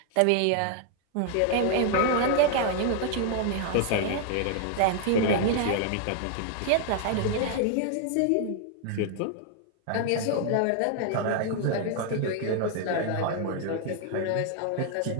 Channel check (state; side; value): different; both; correlation 0.00